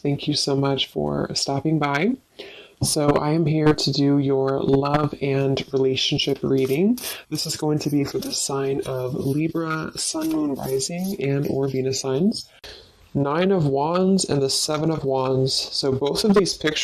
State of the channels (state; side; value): identical; both; correlation 1.00